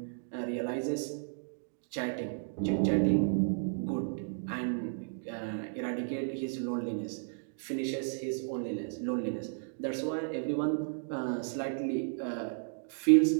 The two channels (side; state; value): left; silent; digital silence